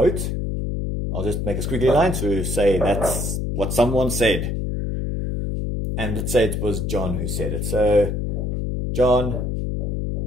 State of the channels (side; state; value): left; noise; hum, 1 dB below the sound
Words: I'll just make a squiggly line to say that's what someone said. And let's say it was John who said it. So, John